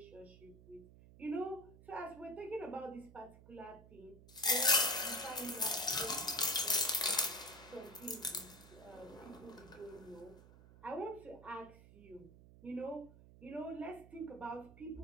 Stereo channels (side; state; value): right; noise; hum, 20 dB below the sound